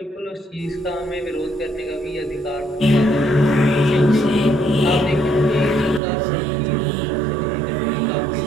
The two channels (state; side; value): drops out; left; at 6.0 s